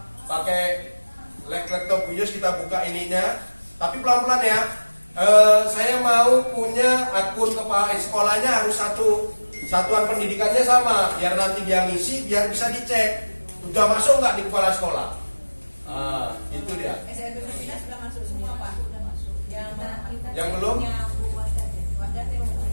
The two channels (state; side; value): inverted; both; correlation -1.00